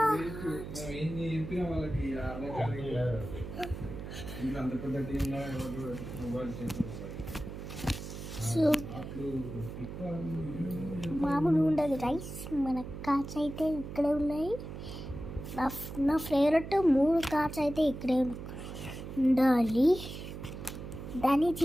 సో మామూలు ఉండదు రైస్. మన కార్డ్స్ అయితే ఇక్కడే ఉన్నాయి. నా ఫేవరెట్ 3 కార్డ్స్ అయితే ఇక్కడే ఉండాలి. దాన్ని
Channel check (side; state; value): right; noise; hum, 9 dB below the sound